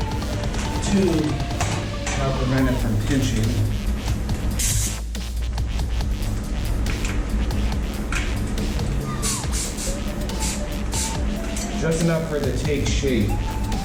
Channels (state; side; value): identical; both; correlation 1.00